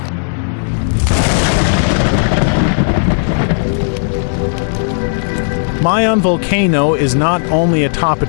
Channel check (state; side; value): silent; right; digital silence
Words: Mayon Volcano is not only a top